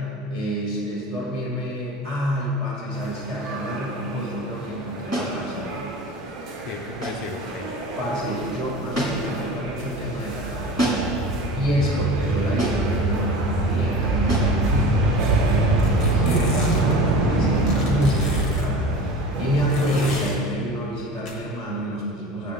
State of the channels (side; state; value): both; normal; correlation 0.36